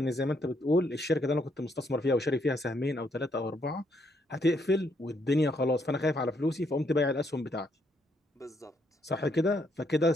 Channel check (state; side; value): normal; both; correlation 0.74